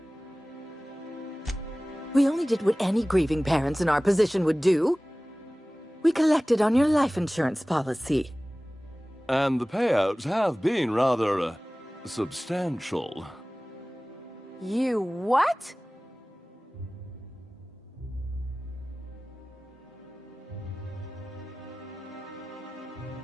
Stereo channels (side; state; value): both; normal; correlation 0.98